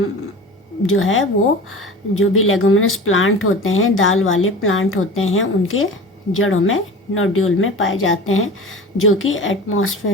जो है वो जो भी लेगुमिनस प्लांट होते हैं, दाल वाले प्लांट होते हैं, उनके जड़ों में नोड्यूल में पाए जाते हैं, जो कि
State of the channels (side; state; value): both; normal; correlation 0.35